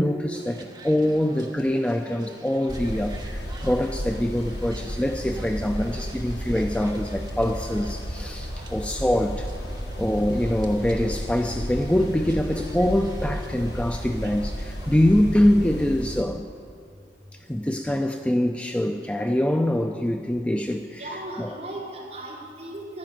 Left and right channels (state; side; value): normal; both; correlation 0.94